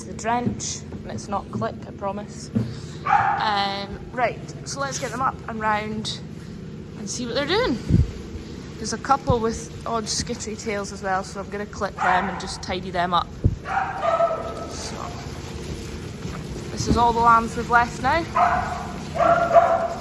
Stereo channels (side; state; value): both; identical; correlation 1.00